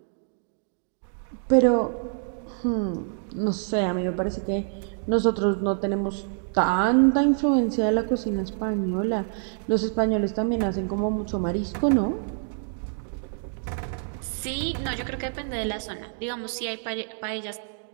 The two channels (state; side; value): silent; left; digital silence